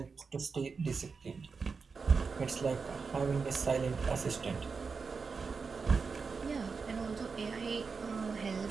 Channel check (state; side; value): quieter; left; 5.0 dB